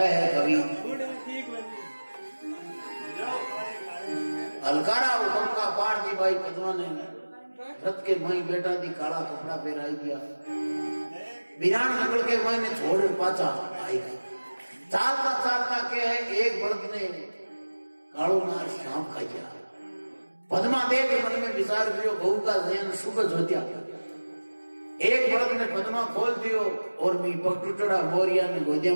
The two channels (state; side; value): inverted; both; correlation -1.00